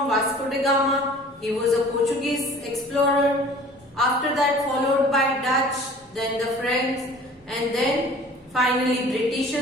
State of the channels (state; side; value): normal; both; correlation 0.47